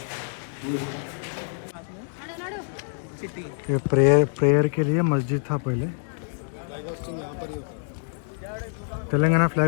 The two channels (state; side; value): silent; right; digital silence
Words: ये प्रेयर के लिए मस्जिद था पहले। फ्लैग होस्टिंग यहाँ पर ही होता तेलंगाना